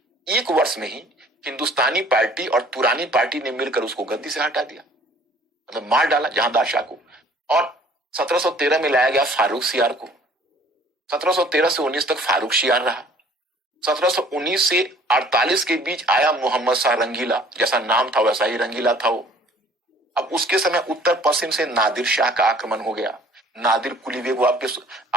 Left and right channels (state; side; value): normal; both; correlation 0.54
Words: एक वर्ष में ही हिंदुस्तानी पार्टी और तुरानी पार्टी ने मिलकर उसको गद्दी से हटा दिया, मतलब मार डाला जहांदार शाह को। और 1713 में लाया गया फारूक सियार को। 1713 से 19 तक फारूक सियार रहा। 1719 से 48 के बीच आया मोहम्मद शाह रंगीला, जैसा नाम था वैसा ही रंगीला था वो। अब उसके समय उत्तर पश्चिम से नादिर शाह का आक्रमण हो गया। नादिर कुली बेग, वो